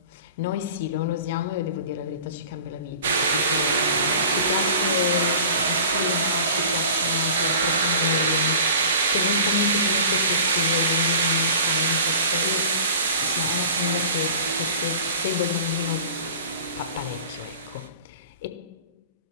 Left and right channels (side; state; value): both; inverted; correlation -0.42